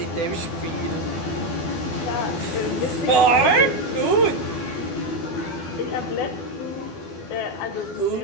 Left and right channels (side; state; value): right; late; 12 ms